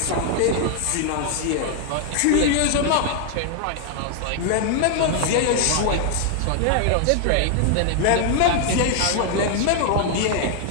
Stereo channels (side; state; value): both; different; correlation 0.00